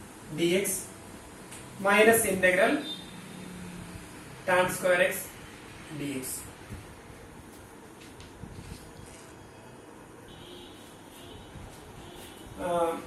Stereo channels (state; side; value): identical; both; correlation 1.00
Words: dx minus integral tan square x dx.